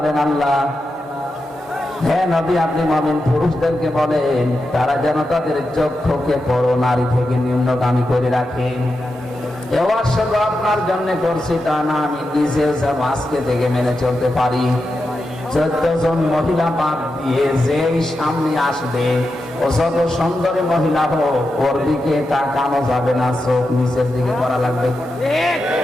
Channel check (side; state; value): both; normal; correlation 0.88